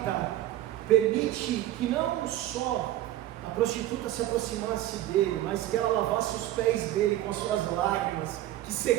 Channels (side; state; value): left; quieter; 14.3 dB